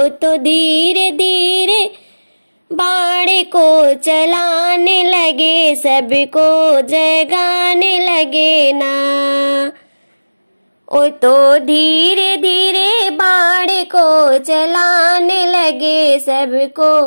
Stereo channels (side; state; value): both; inverted; correlation -1.00